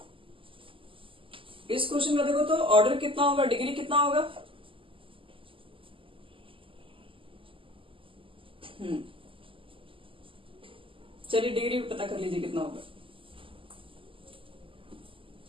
इस क्वेश्चन का देखो तो ऑर्डर कितना होगा, डिग्री कितना होगा। चलिए डिग्री पता कर लीजिए कितना होगा।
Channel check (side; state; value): left; late; 0.25 ms